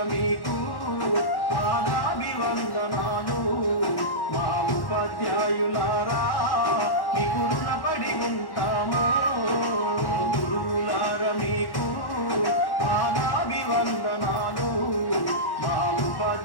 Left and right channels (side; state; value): right; late; 1.1 ms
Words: మీకు పాదాభివందనాలు. మా ఉపాధ్యాయులారా మీకు రుణపడి ఉంటాము. గురువులార మీకు పాదాభివందనాలు.